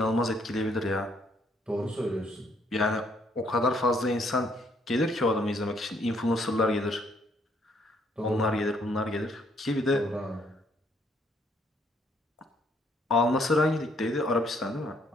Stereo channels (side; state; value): both; normal; correlation 0.68